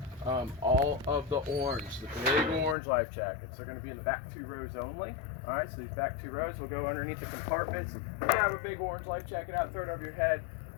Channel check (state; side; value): drops out; right; at 2.8 s